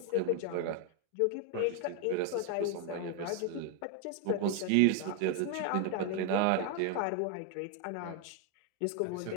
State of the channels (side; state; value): both; different; correlation 0.01